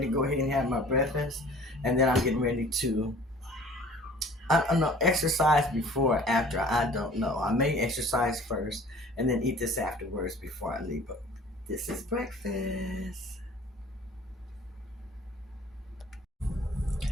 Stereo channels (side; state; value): both; normal; correlation 0.49